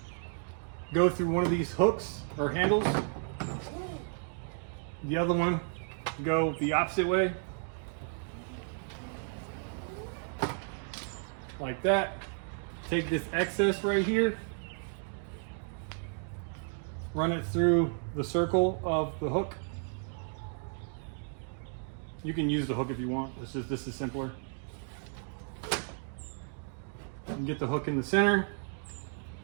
Go through one of these hooks or handles. The other one, go the opposite way. Like that. Take this excess right here, run it through the circle of the hook. You can use the hook if you want. This is simpler. And get the hook in the center,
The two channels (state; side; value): silent; left; 55 dB below the other